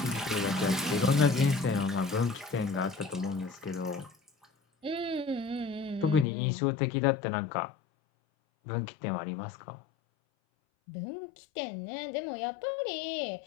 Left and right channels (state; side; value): drops out; right; at 6.2 s